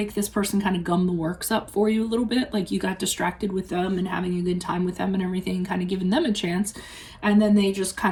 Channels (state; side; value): identical; both; correlation 1.00